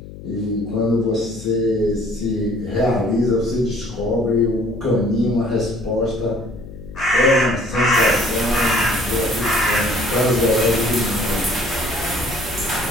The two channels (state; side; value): noise; left; hum, 15 dB below the sound